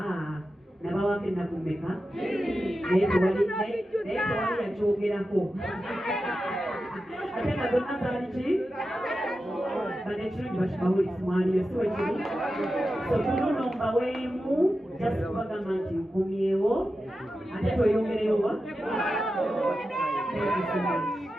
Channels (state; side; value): normal; both; correlation 0.91